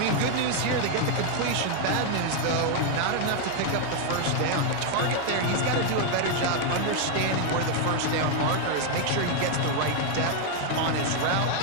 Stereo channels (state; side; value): different; both; correlation 0.00